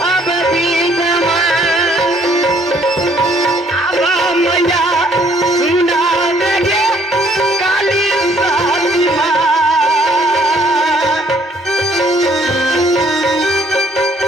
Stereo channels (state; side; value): normal; both; correlation 0.64